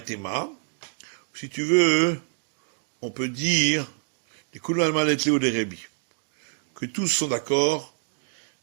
Si tu veux, on peut dire que tous sont d'accord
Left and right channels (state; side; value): silent; left; digital silence